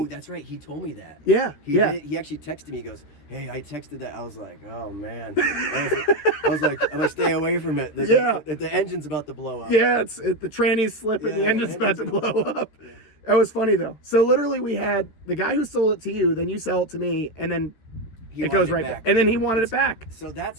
that's right. He told me that. Yeah. He actually texted me. He goes, hey, I texted that. I was like, oh, man. I was like, I'm going to stay away from it. The engine's about to blow up. Yeah, the tranny's slipping. The engine's about to blow up. That was funny, though. So, literally, we had the guy who sold it to you, then you sell it to me, and then it goes right back. And then he wanted it back. So that's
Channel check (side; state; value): right; late; 13 ms